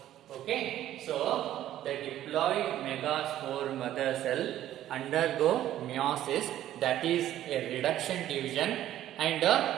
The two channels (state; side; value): quieter; left; 12.7 dB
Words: Okay, so the diploid megaspore mother cell undergo meiosis, that is a reduction division, and